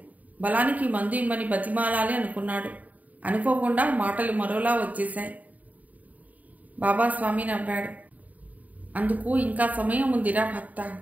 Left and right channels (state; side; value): late; left; 0.074 ms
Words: బలానికి మందు ఇమ్మని బతిమాలాలి అనుకున్నాడు. అనుకోకుండా మాటలు మరోలా వచ్చేశాయి. బాబాస్వామి నవ్వాడు. అందుకు ఇంకా సమయం ఉందిరా భక్త.